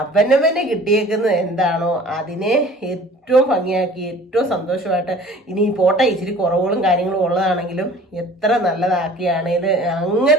കിട്ടിയേക്കുന്നത് എന്താണോ അതിനെ ഏറ്റവും ഭംഗിയാക്കി ഏറ്റവും സന്തോഷമായിട്ട്, ഇനി പോട്ടെ ഇച്ചിരി കുറവുകളും കാര്യങ്ങളും ഉള്ളതാണെങ്കിലും എത്ര നല്ലതാക്കിയാണേൽ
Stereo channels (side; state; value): both; normal; correlation 0.48